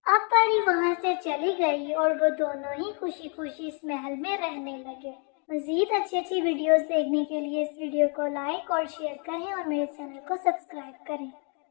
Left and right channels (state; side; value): quieter; right; 38.5 dB